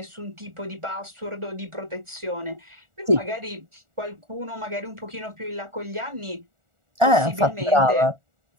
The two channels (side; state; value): left; late; 1.4 ms